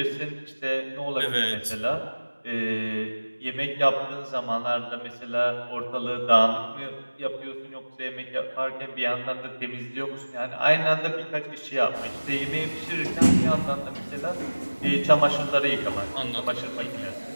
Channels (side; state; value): both; inverted; correlation -1.00